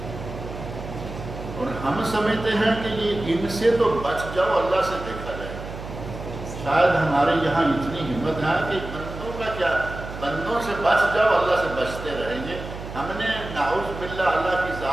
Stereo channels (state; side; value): noise; right; hum, 10 dB below the sound